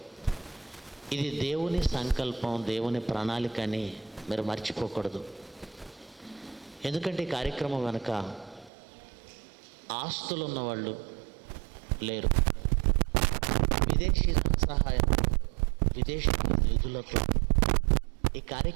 ఇది దేవుని సంకల్పం, దేవుని ప్రణాళిక అని మీరు మర్చిపోకూడదు. ఎందుకంటే ఈ కార్యక్రమం వెనుక ఆస్తులు ఉన్నవాళ్ళు లేరు. విదేశీ సహాయంతో, విదేశీ నిధులతో ఈ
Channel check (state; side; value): drops out; left; at 8.7 s